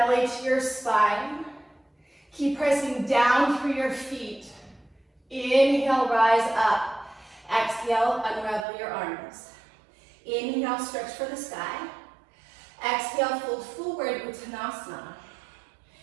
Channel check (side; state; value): left; drops out; at 8.7 s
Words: to your spine, keep pressing down through your feet. Inhale, rise up. Exhale, unravel your arms. Inhale, stretch for the sky. Exhale, fold forward, Uttanasana.